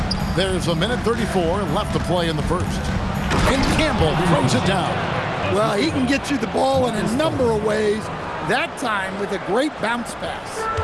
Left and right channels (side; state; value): both; identical; correlation 1.00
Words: There's a minute 34 left to play in the first. And Campbell throws it down. Well, he can get you the ball in a number of ways, that time with a great bounce pass.